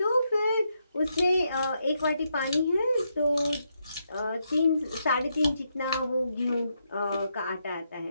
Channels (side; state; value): both; inverted; correlation -0.80